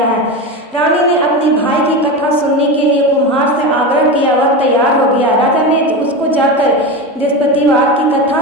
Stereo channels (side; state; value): both; normal; correlation 0.21